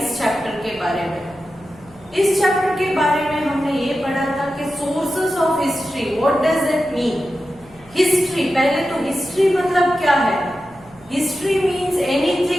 चैप्टर के बारे में। इस चैप्टर के बारे में हमने ये पढ़ा था कि sources of history, what does it mean. History, पहले तो हिस्ट्री मतलब क्या है। History means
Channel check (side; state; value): right; noise; hum, 25 dB below the sound